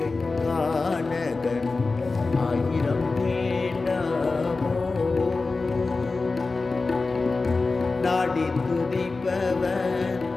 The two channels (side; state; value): right; quieter; 3.8 dB